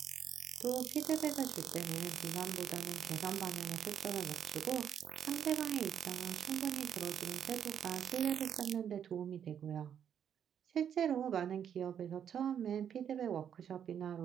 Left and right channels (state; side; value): quieter; left; 8.7 dB